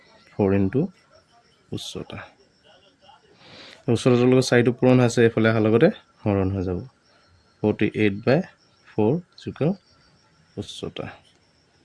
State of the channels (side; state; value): both; identical; correlation 1.00